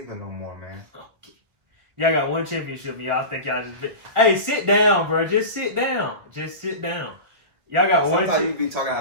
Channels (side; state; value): left; late; 1.4 ms